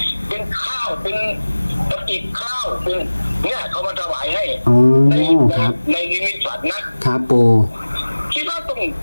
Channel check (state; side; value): inverted; both; correlation -1.00